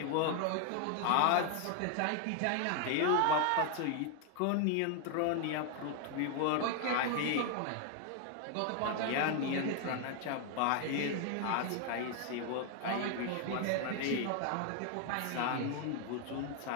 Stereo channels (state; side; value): different; both; correlation 0.00